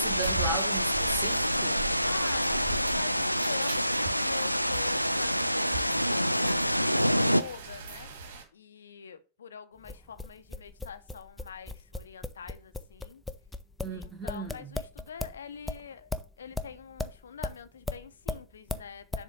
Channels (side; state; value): both; inverted; correlation -0.79